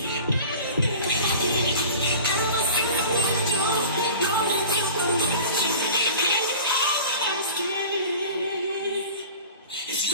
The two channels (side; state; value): both; inverted; correlation -0.40